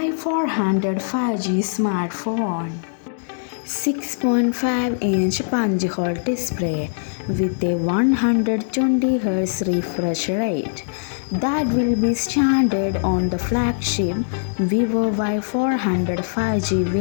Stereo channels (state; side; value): silent; right; digital silence